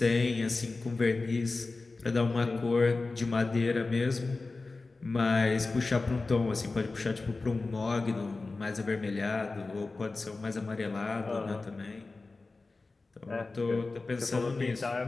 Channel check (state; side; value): quieter; right; 3.6 dB